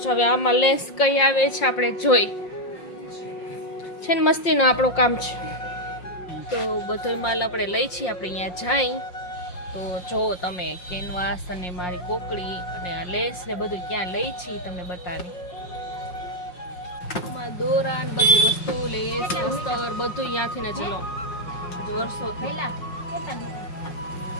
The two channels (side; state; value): right; late; 5.6 ms